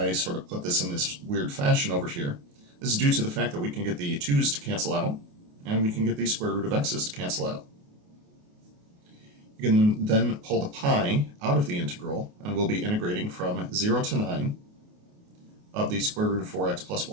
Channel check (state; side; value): late; left; 28 ms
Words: sort of put this in this weird fashion over here. This is due to the fact that we can get the 2's to cancel out, and we can get the square root of x's to cancel out. You can then pull the pi out of the integral, and we'll be integrating from 0 to 9 of the square root of 4x plus